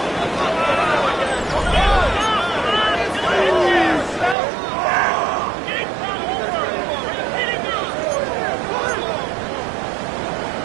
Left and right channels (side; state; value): left; drops out; at 4.4 s